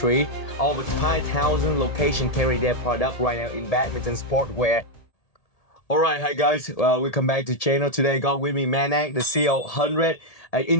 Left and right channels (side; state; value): right; late; 1.8 ms